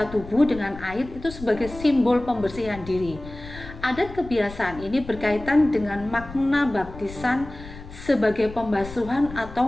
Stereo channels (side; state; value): left; noise; rumble, 14 dB below the sound